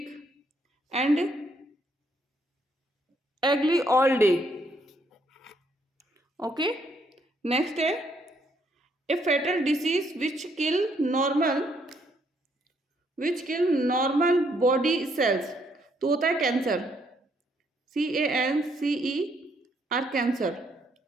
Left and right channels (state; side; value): normal; both; correlation 0.71